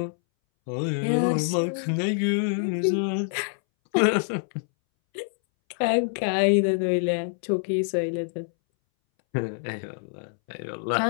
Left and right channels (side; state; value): right; silent; 61 dB below the other